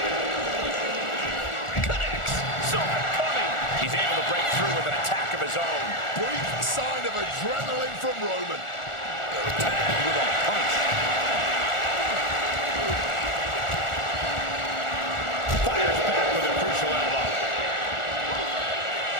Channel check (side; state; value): right; late; 1.4 ms